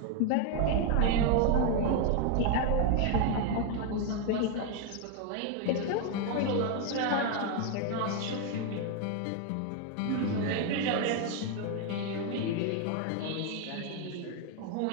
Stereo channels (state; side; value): different; both; correlation 0.01